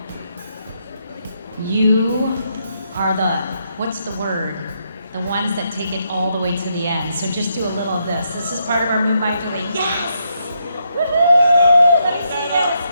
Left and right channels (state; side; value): inverted; both; correlation -0.78